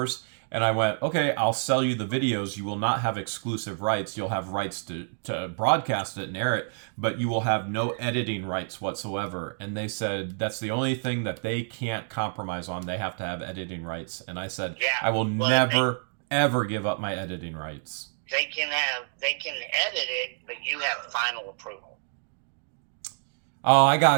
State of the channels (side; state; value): left; silent; digital silence